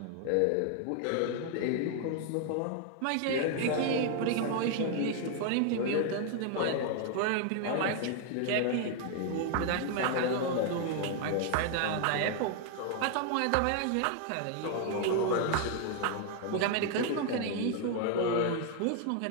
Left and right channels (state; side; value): different; both; correlation 0.00